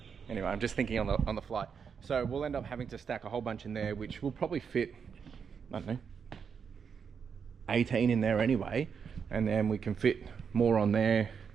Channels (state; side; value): quieter; left; 6.6 dB